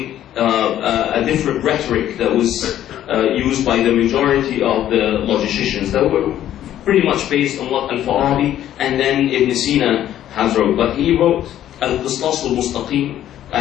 a different rhetoric that was used by the majority of the logicians that were pretty much based on what Al-Farabi and then Ibn Sina has wrote. But he wrote Al-Qistas al-Mustaqim,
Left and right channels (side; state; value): right; quieter; 11.8 dB